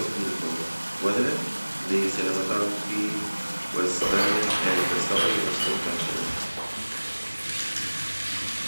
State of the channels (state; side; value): inverted; both; correlation -1.00